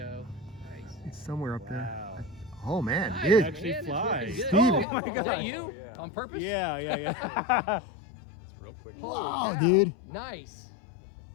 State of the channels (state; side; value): drops out; right; at 4.9 s